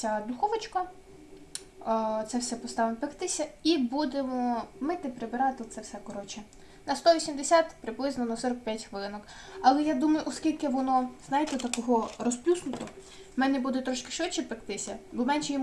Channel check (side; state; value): both; identical; correlation 1.00